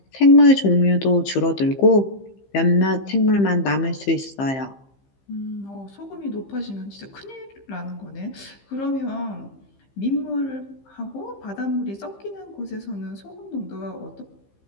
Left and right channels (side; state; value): right; late; 15 ms